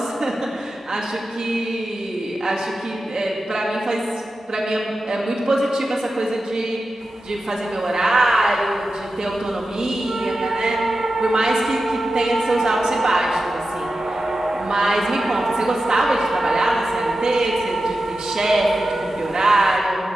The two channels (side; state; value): both; normal; correlation 0.92